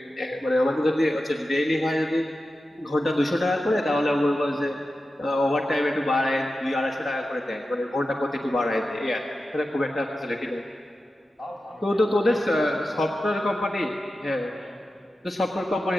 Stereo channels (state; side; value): normal; both; correlation 0.92